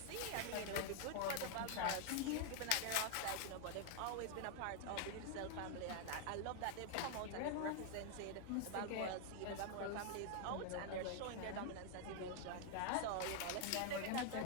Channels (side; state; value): both; different; correlation 0.00